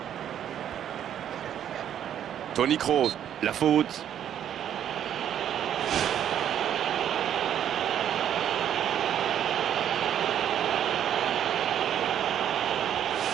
Toni Kroos. La faute.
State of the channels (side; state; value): left; quieter; 10.0 dB